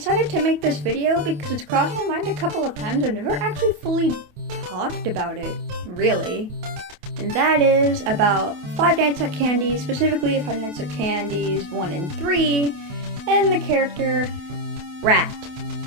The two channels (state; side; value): late; left; 28 ms